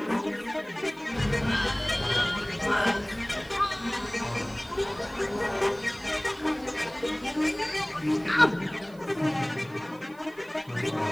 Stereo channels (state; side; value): noise; right; hiss, 27 dB below the sound